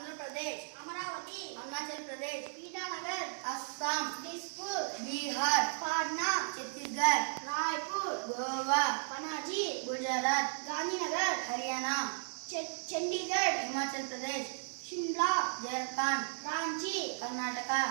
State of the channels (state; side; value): silent; left; digital silence